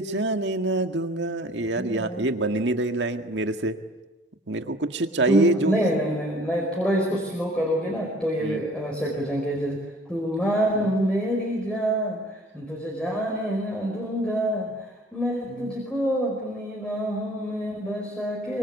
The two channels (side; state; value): both; normal; correlation 0.51